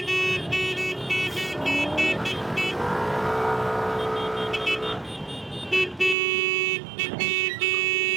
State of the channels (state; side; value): drops out; left; at 6.2 s